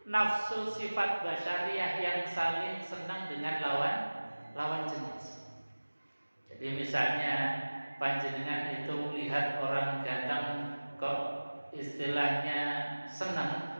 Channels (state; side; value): inverted; both; correlation -1.00